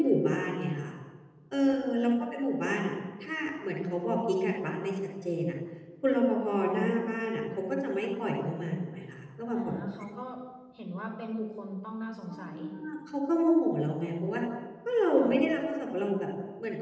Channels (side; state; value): both; identical; correlation 1.00